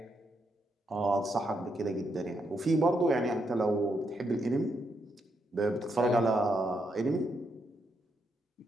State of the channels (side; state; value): both; normal; correlation 0.79